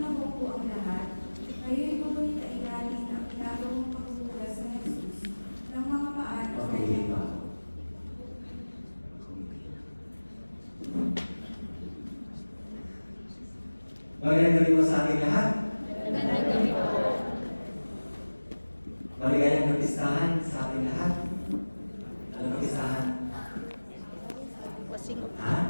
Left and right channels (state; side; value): inverted; both; correlation -1.00